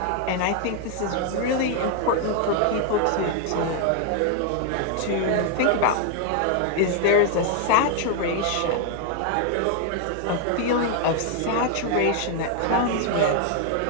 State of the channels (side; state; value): both; different; correlation 0.00